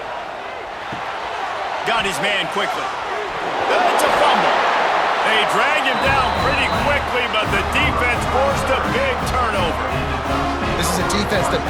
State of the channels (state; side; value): identical; both; correlation 1.00